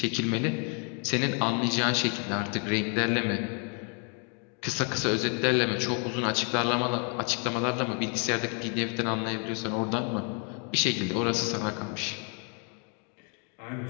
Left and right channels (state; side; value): quieter; right; 38.4 dB